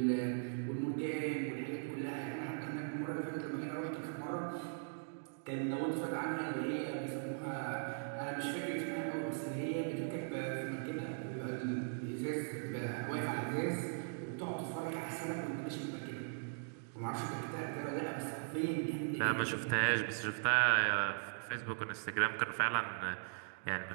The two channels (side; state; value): left; silent; digital silence